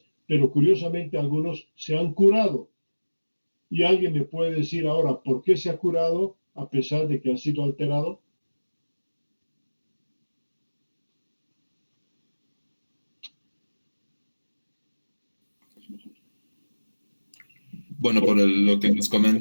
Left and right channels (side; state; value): both; inverted; correlation -1.00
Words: pero curiosamente algunos se han curado. Y alguien me puede decir ahora, ¿por qué se ha curado a pesar de que ha sido alterado? Bueno, lo que nos